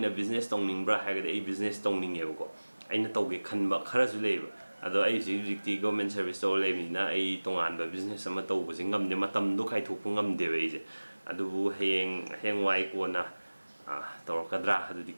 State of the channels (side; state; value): both; inverted; correlation -1.00